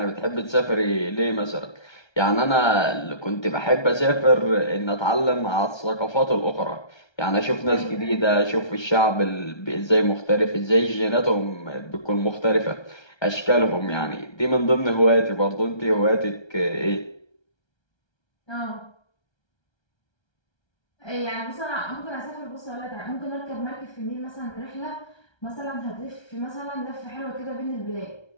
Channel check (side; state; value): right; late; 1.3 ms